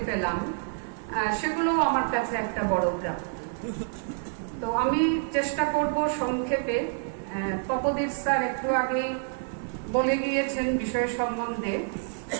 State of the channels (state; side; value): silent; left; digital silence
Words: পেলাম, সেগুলো আমার কাছে একটা বড় প্রাপ্তি। তো আমি চেষ্টা করব সংক্ষেপে। তপোদীপ স্যার একটু আগেই বলে গিয়েছেন বিষয় সম্বন্ধে।